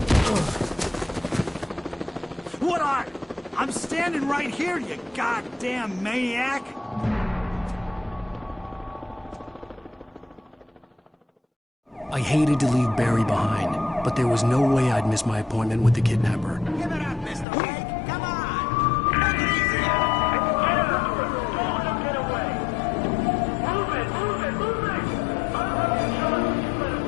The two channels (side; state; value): right; drops out; at 17.4 s